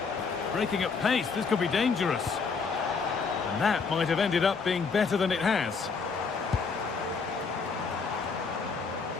Breaking at pace, this could be dangerous. And that might have ended up being better than it has.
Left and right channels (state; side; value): quieter; right; 5.1 dB